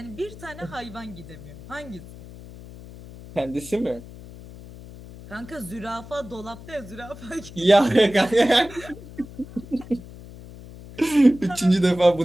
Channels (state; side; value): noise; left; hum, 16 dB below the sound